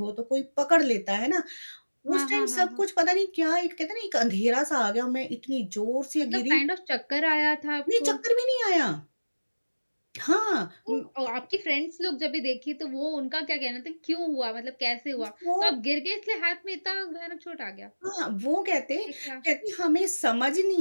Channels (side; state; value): both; inverted; correlation -1.00